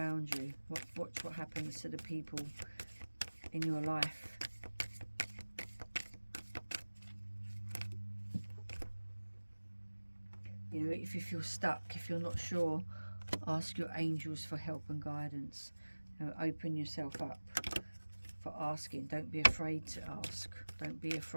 you, watch what happens to the people in your life. You know, if you feel stuck, if you're not sure, ask your angels for help and guidance. You know, open yourself up for asking. Don't be afraid to ask. Don't be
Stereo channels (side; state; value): both; inverted; correlation -1.00